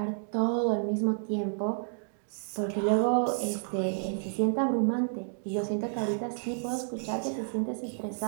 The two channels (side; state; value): left; silent; digital silence